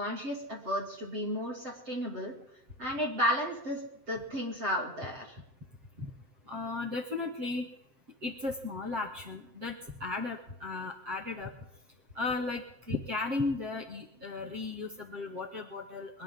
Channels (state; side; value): late; left; 7.7 ms